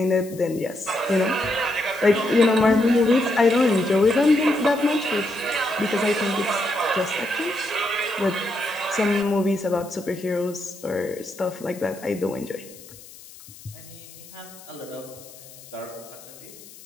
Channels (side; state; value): left; noise; hiss, 19 dB below the sound